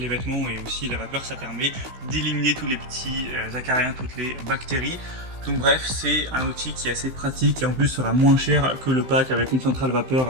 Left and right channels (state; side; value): late; left; 16 ms